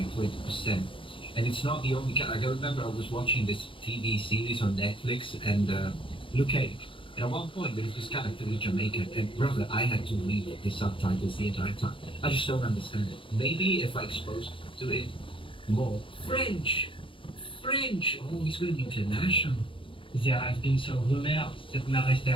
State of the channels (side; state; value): right; late; 0.25 ms